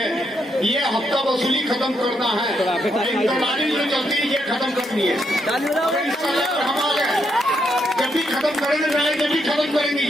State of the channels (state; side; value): normal; both; correlation 0.78